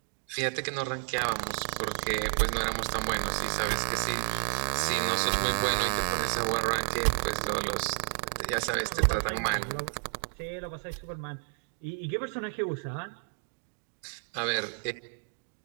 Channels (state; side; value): silent; left; digital silence